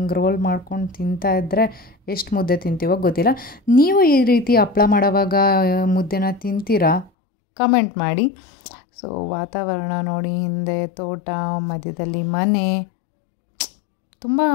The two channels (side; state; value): right; drops out; at 7.1 s